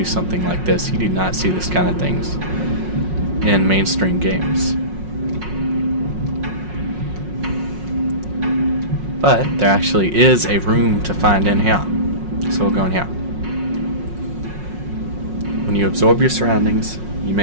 something like this. You do not see this kind of things in mainstream games. But there actually is a room to find in here. So we'll go in here. When you absorb your surroundings, you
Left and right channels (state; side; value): late; left; 5.5 ms